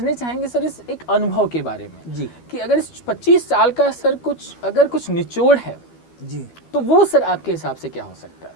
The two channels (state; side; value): late; right; 12 ms